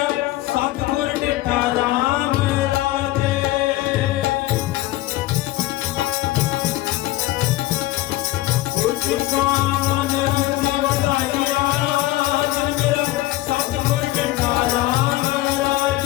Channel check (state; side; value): quieter; right; 17.0 dB